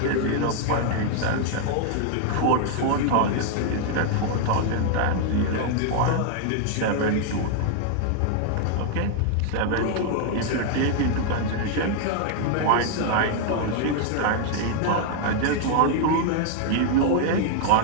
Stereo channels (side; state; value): both; different; correlation 0.00